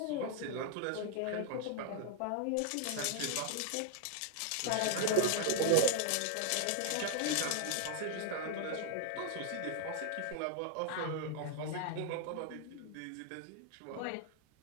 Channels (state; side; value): different; both; correlation 0.00